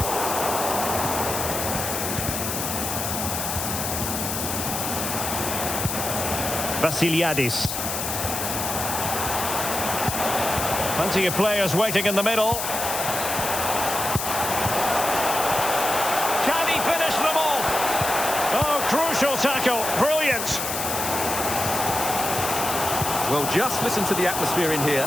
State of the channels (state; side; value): noise; left; hiss, 3 dB below the sound